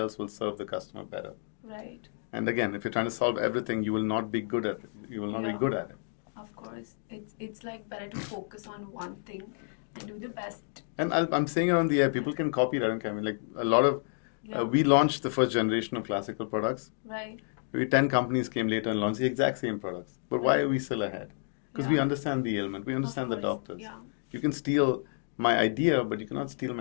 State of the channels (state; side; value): silent; right; digital silence